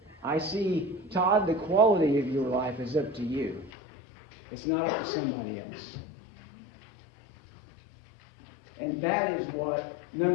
I see, Todd, the quality of your life is up to you. It's not up to somebody else. And that is what,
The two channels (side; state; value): right; drops out; at 3.7 s